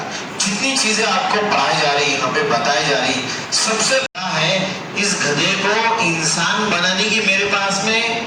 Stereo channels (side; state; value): both; identical; correlation 1.00